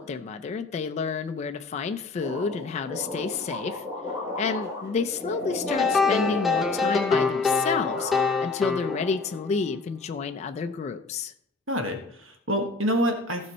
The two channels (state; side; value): quieter; right; 3.6 dB